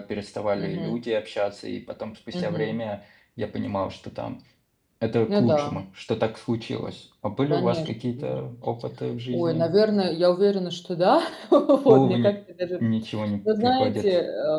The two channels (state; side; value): identical; both; correlation 1.00